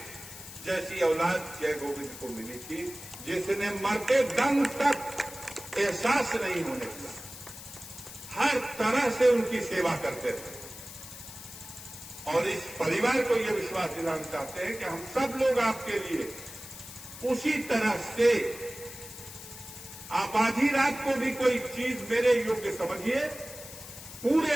जैसी औलाद जय गोविंद को मिली थी, जिसने मरते दम तक एहसास नहीं होने दिया, हर तरह से उनकी सेवा करते थे। और इस परिवार को यह विश्वास दिलाना चाहते हैं कि हम सब लोग आपके लिए उसी तरह से, आप आधी रात को भी कोई चीज मेरे योग्य समझिए, पूरे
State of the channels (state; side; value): noise; left; hiss, 13 dB below the sound